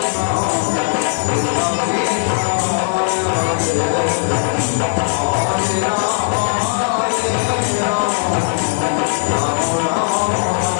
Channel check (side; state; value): right; silent; digital silence